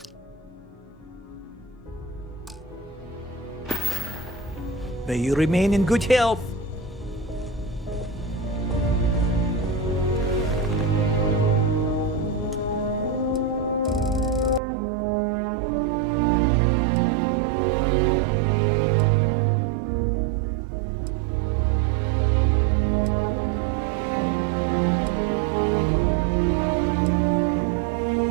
May you remain in good health.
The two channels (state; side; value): drops out; left; at 14.6 s